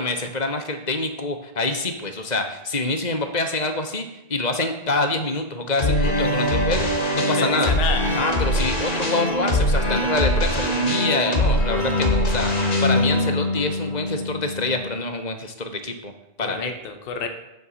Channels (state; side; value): late; right; 2.0 ms